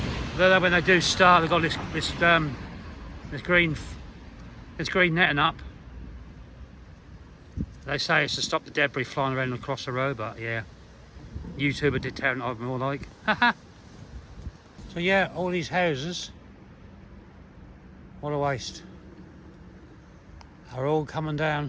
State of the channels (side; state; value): both; identical; correlation 1.00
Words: Though when they do start, they've got this green netting up. They say it's to stop the debris flying around across the road, but yeah, YouTuber did tear it up more like. So yeah, all these houses, what a waste, are all coming